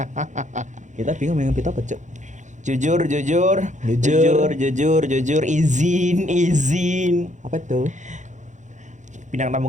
Kita bingung dengan kita apa, Cok? Jujur, izin. Apa itu? Bintang tamu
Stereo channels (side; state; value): left; late; 0.35 ms